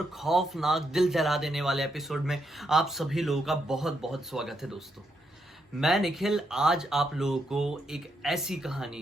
खौफनाक दिल जला देने वाले एपिसोड में आप सभी लोगों का बहुत बहुत स्वागत है। दोस्तों, मैं निखिल आज आप लोगों को एक ऐसी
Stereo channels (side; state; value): both; normal; correlation 0.79